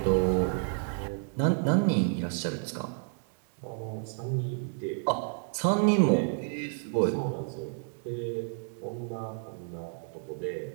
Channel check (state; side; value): silent; left; 57 dB below the other